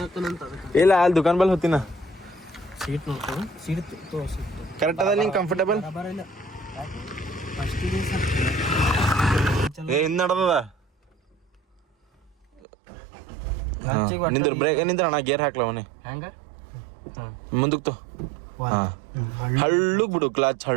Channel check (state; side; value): drops out; left; at 12.6 s